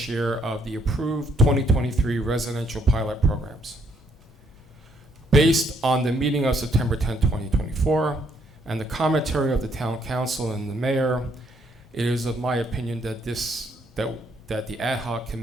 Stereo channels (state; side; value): normal; both; correlation 0.70